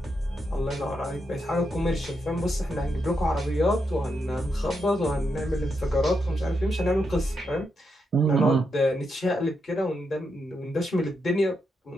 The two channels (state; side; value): normal; both; correlation 0.83